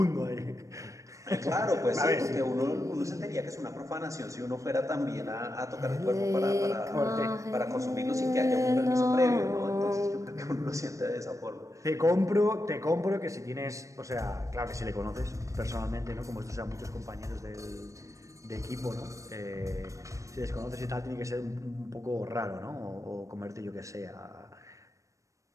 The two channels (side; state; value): left; late; 0.15 ms